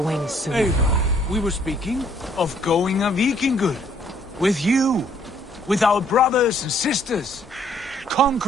wings soon. Eivor, we were speaking of going a Vikingur. With you. With our brothers and sisters.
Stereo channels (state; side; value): normal; both; correlation 0.64